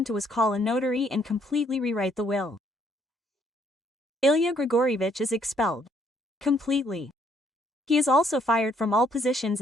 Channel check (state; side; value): normal; both; correlation 0.67